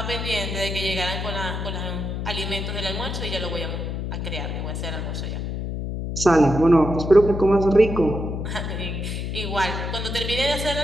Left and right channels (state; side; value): noise; left; hum, 4 dB below the sound